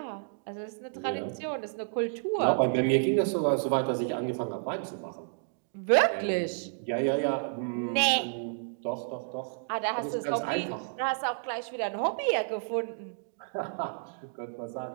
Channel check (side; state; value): left; silent; digital silence